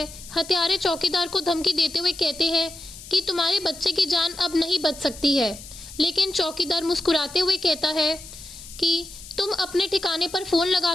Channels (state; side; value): noise; left; hiss, 15 dB below the sound